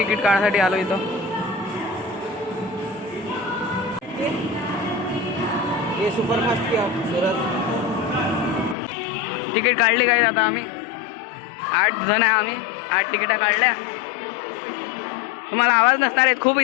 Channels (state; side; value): drops out; right; at 8.8 s